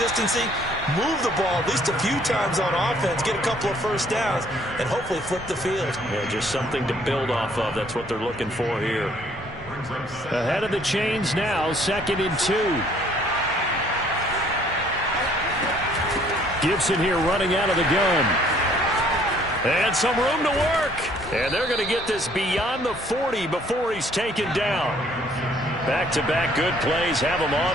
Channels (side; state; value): both; normal; correlation 0.61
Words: move the ball at least a few times on offense, get a couple of first downs, and hopefully flip the field. Yeah, just something to build off of. That's what they're looking for here. Ahead of the chains now, 2nd and 2. Gibson here running out of the gun. And some room to work. And they're going to get this beyond the 40 before he's taken down. Back-to-back good plays have him